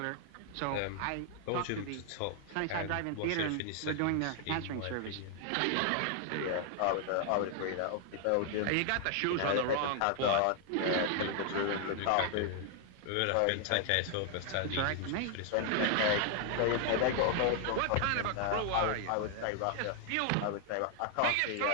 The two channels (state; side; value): different; both; correlation 0.00